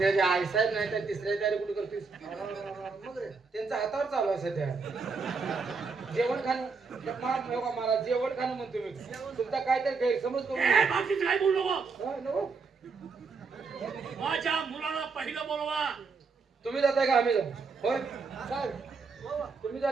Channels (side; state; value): left; quieter; 4.7 dB